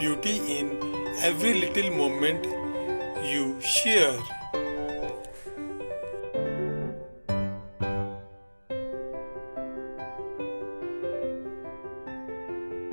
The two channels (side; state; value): both; inverted; correlation -1.00